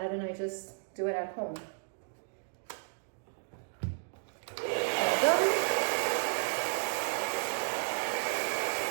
and I just do it at home. All done.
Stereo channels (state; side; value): silent; left; digital silence